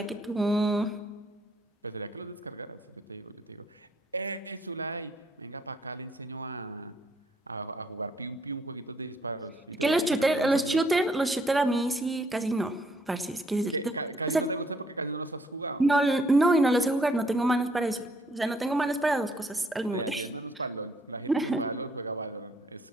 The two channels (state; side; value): normal; both; correlation 0.67